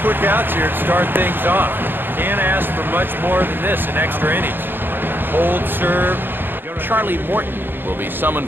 quick outs here to start things off. Can't ask for much more than this in extra innings. Hold, serve. Charlie Morton will be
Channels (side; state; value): left; late; 0.098 ms